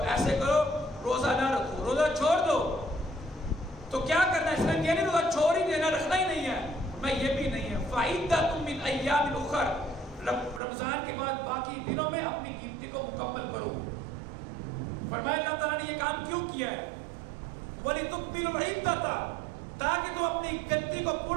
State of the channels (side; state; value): left; drops out; at 10.6 s